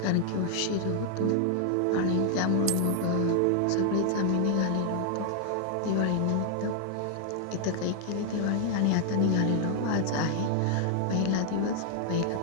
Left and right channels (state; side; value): different; both; correlation 0.00